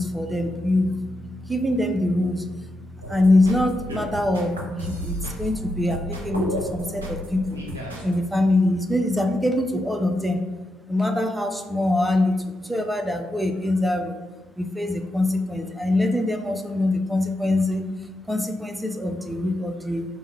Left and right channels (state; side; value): normal; both; correlation 0.85